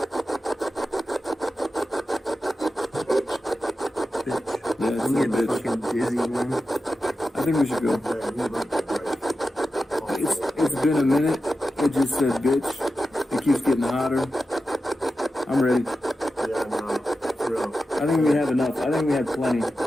Yeah, it's I'm a getting bitch. fucking dizzy, man. I think we should go. It's been a minute. It just said bitch. It keeps getting hotter. I'm ready. Yeah, no, for real. I think we have enough. I think we have plenty.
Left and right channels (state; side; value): normal; both; correlation 0.92